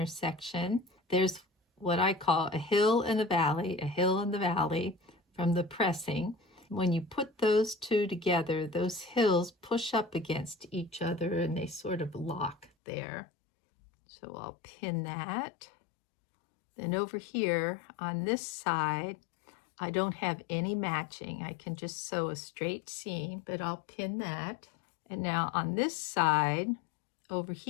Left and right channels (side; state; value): right; drops out; at 12.7 s